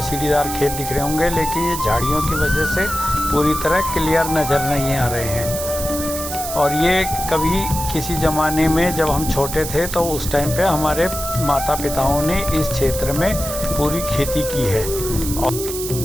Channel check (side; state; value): right; noise; hiss, 7 dB below the sound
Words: सीढ़ीदार खेत दिख रहे होंगे, लेकिन ये झाड़ियों की वजह से पूरी तरह क्लियर नज़र नहीं आ रहे हैं। और ये कभी किसी ज़माने में जब हम छोटे थे तो उस टाइम पे हमारे माता पिताओं ने इस क्षेत्र में पूरी खेती की है। और